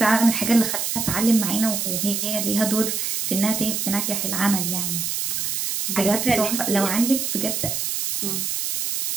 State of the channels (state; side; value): noise; right; hiss, 1 dB below the sound